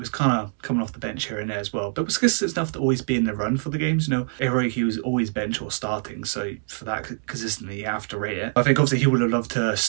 kind of coming off the bench here and there as well. But it was consistent enough to always be in the run for the games. You know, heroic, he was always bench or starting. So for that consistently, you have to rate it. I think obviously he would have loved to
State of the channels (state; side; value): silent; left; 62 dB below the other